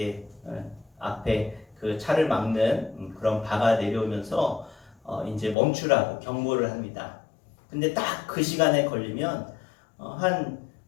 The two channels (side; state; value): right; drops out; at 5.6 s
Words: 앞에 그 차를 막는 그런 바가 내려오면서 이제 멈추라고 경고를 합니다. 근데 딱 그 시간에 걸리면 한